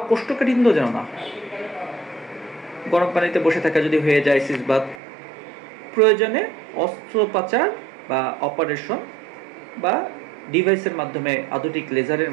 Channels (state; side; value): drops out; left; at 5.0 s